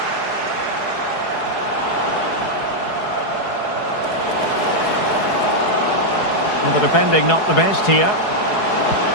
Well, the defending not the best here.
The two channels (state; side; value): late; right; 4.7 ms